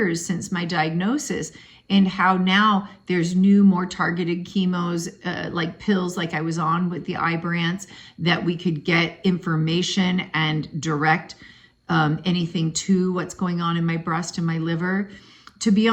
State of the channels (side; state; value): both; identical; correlation 1.00